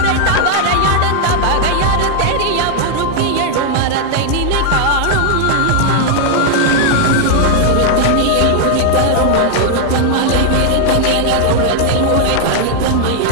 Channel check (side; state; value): both; different; correlation 0.00